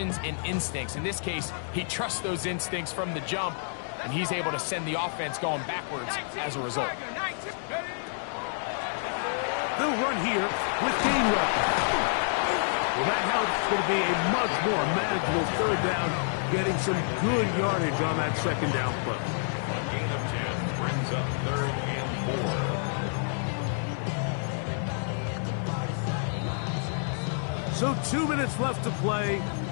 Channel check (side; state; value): right; silent; digital silence